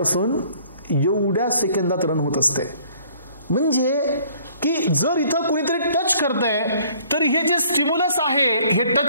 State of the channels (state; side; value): inverted; both; correlation -0.58